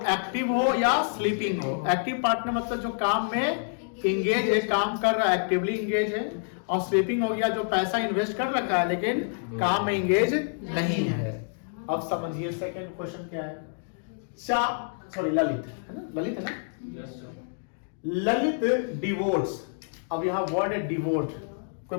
एक्टिव हो या स्लीपिंग हो। एक्टिव पार्टनर मतलब जो काम में इंगेज है, काम कर रहा है, एक्टिवली इंगेज है। और स्लीपिंग हो गया जो पैसा इन्वेस्ट कर रखा है लेकिन काम में इंगेज नहीं है। अब समझिए सेकंड क्वेश्चन क्या है। सॉरी ललित है ना, ललित है ना, ललित डिवोर्स। अब यहाँ वर्ड है डिवोर्स। कोई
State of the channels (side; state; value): right; silent; digital silence